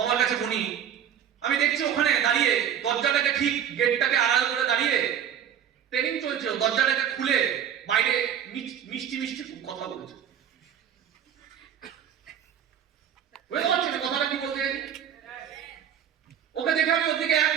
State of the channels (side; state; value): left; quieter; 9.1 dB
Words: আমার কাছে বনি, আমি দেখছি ওখানে দাঁড়িয়ে দরজাটাকে ঠিক গেটটাকে আড়াল করে দাঁড়িয়ে ট্রেনিং চলছে, দরজাটাকে খুলে বাইরে মিষ্টি কথা বলছে। বুঝতে পারছেন কথাটা কি বলতে? ওকে দেখে আমি ওর দিকে এক